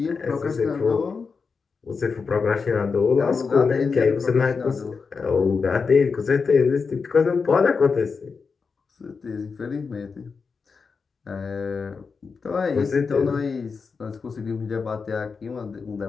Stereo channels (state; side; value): quieter; right; 5.1 dB